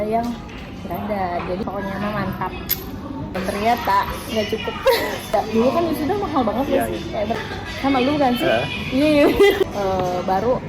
yang berada, jadi pokoknya mah mantap. Dan ternyata nggak cukup. Dulu kan sudah mahal banget ya sih. Kayak sama lu kan sih? Iya. Baru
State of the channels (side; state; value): both; identical; correlation 1.00